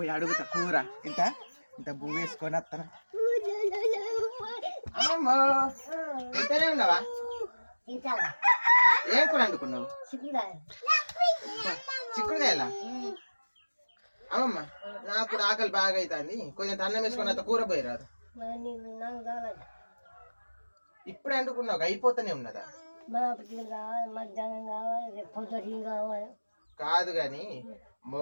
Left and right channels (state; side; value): inverted; both; correlation -1.00